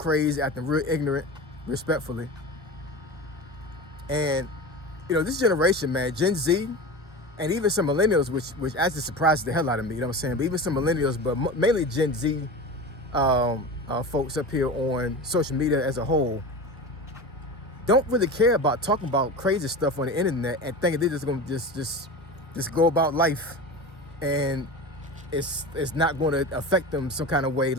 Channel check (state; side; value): normal; both; correlation 0.29